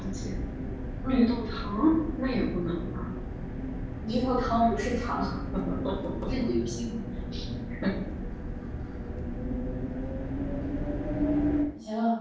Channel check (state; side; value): identical; both; correlation 1.00